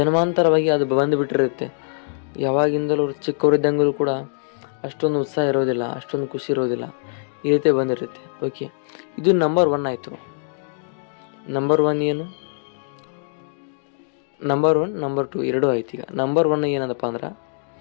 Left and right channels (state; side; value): silent; right; digital silence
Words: ಅದು ಬಂದುಬಿಟ್ಟಿರುತ್ತೆ. ಯಾವಾಗಿಂದಲೂ ಚಿಕ್ಕವರಿದ್ದಂಗಲೂ ಕೂಡ ಅಷ್ಟೊಂದು ಉತ್ಸಾಹ ಇರೋದಿಲ್ಲ, ಅಷ್ಟೊಂದು ಖುಷಿ ಇರೋದಿಲ್ಲ, ಈ ರೀತಿ ಬಂದಿರುತ್ತೆ. ಓಕೆ, ಇದು ನಂಬರ್ 1 ಆಯಿತು. ನಂಬರ್ 1 ಏನು? ನಂಬರ್ 1 ನಂಬರ್ 2 ಎರಡೂ ಆಯ್ತು. ಈಗ ನಂಬರ್ 1 ಏನದಪ್ಪ ಅಂದ್ರೆ,